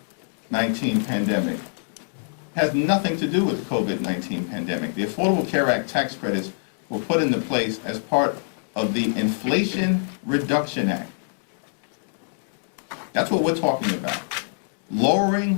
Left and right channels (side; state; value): right; silent; 62 dB below the other